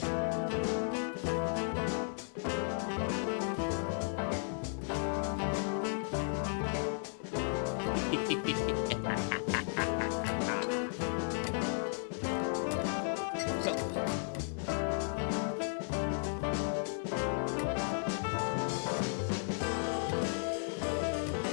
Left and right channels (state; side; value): silent; right; digital silence